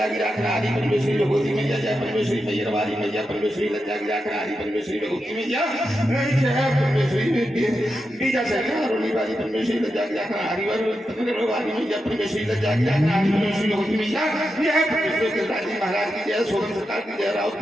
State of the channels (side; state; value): both; normal; correlation 0.88